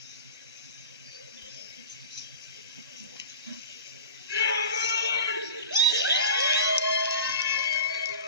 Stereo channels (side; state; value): both; inverted; correlation -0.34